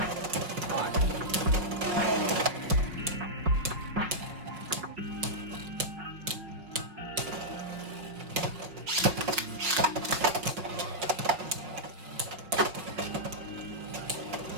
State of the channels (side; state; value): left; late; 5.2 ms